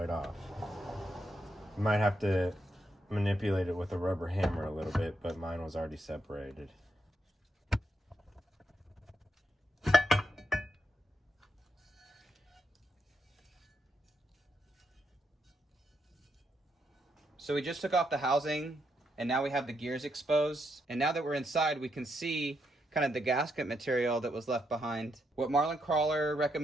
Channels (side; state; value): both; normal; correlation 0.80